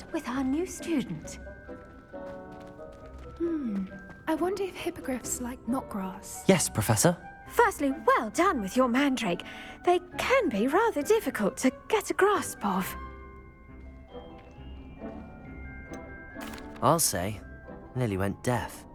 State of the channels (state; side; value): identical; both; correlation 1.00